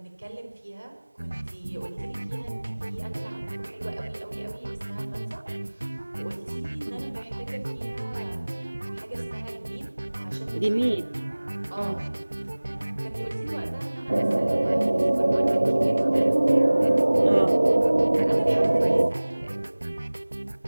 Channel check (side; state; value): both; inverted; correlation -1.00